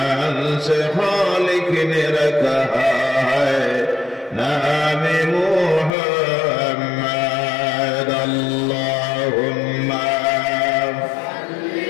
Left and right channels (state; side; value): drops out; right; at 5.9 s